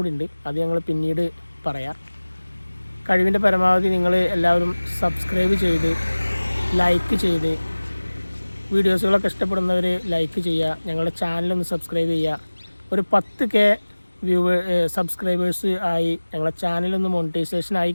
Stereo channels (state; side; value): inverted; both; correlation -1.00